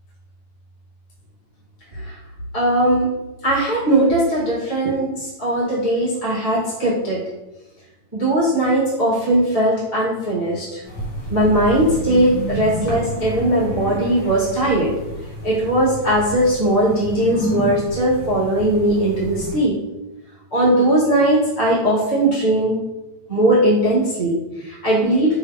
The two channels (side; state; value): right; late; 8.9 ms